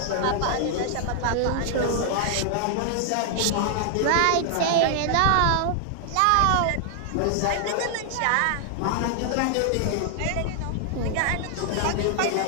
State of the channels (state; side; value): different; both; correlation 0.00